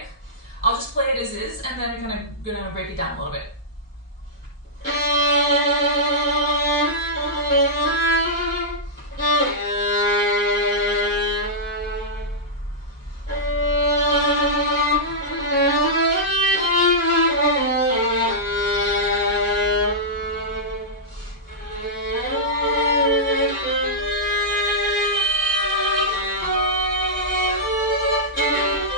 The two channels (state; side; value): normal; both; correlation -0.12